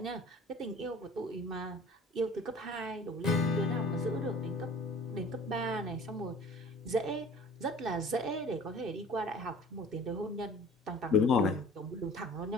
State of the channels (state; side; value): normal; both; correlation 0.46